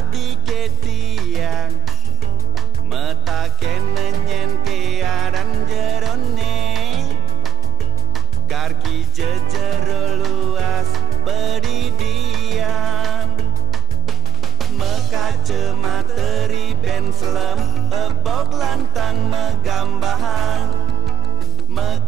ketiang mata kenenyen kearan jerone karki jejero luas beridiam mekace materi benslem ebok lantang megambahan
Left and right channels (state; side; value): quieter; left; 7.6 dB